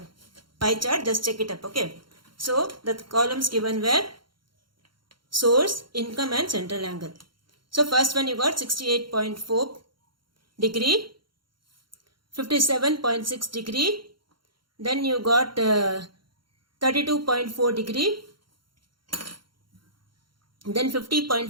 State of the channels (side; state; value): left; late; 0.73 ms